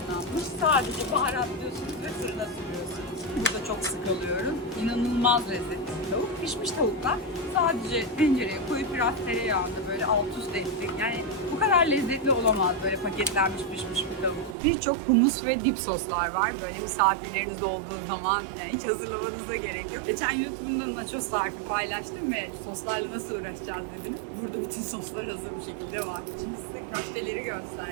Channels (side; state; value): left; drops out; at 14.6 s